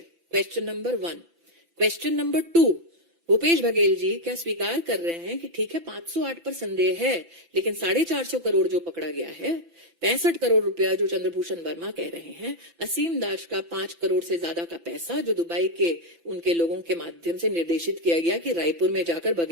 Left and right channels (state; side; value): late; left; 5.9 ms